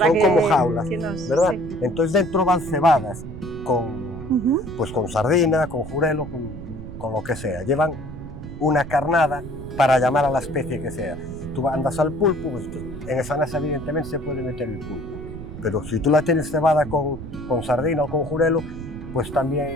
son como jaulas, ¿verdad? Sí. Entonces dentro van cebadas pues con sardina, con jurelo, con lo que sea. Llevan una carnada para llamar a la especie que sea. Tú andas al pulpo, pues en esa nasa evidentemente se puede meter el pulpo. Pero si tú la tienes cebada con sardina o con jurelo, pues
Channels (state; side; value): noise; right; rumble, 11 dB below the sound